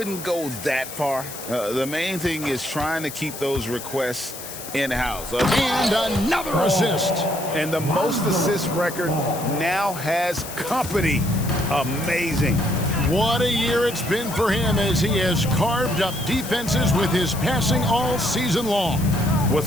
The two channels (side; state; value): left; noise; hiss, 11 dB below the sound